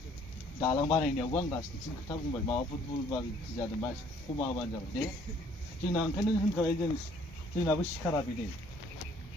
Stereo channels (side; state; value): both; normal; correlation 0.60